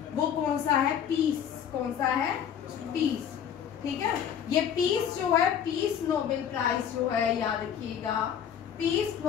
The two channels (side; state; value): right; quieter; 8.7 dB